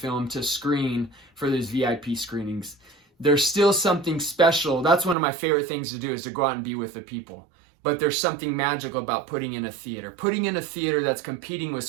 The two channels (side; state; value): left; drops out; at 5.2 s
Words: to screen for these VIP screenings. There's still something special. That's one of my favorite things to do, is to go out and be with the people. But there's something magical about putting in a theater. Putting in a theater that's competing